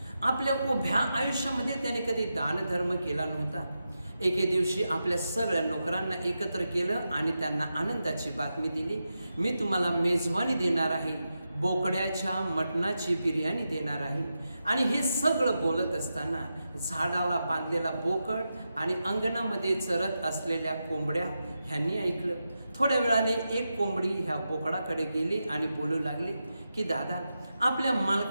आपल्या उभ्या आयुष्यामध्ये त्याने कधी दानधर्म केला नव्हता. एके दिवशी आपल्या सगळ्या नोकरांना एकत्र केलं आणि त्यांना आनंदाची बातमी दिली, मी तुम्हाला मेजवानी देणार आहे, बोकड्याच्या मटणाची बिर्याणी देणार आहे. आणि हे सगळं बोलत असताना झाडाला बांधलेला बोकड आणि अंगणामध्ये चरत असलेल्या कोंबड्या ह्यांनी ऐकलं. थोड्या वेळाने एक कोंबडी ह्या बोकडाकडे गेली आणि बोलू लागली की दादा, आपल्या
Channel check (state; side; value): inverted; both; correlation -0.89